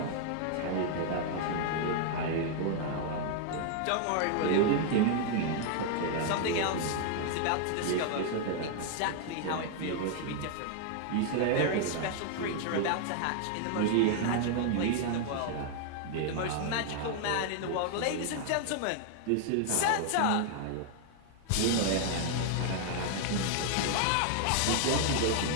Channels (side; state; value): both; different; correlation 0.00